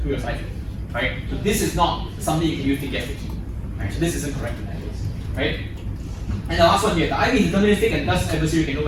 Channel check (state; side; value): identical; both; correlation 1.00